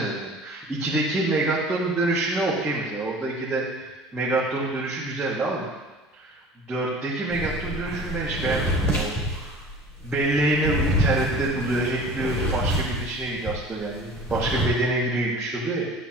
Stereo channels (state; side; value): normal; both; correlation 0.43